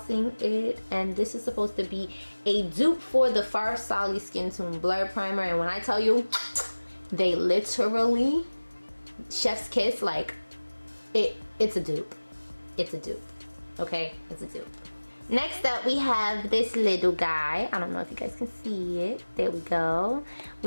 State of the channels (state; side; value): inverted; both; correlation -1.00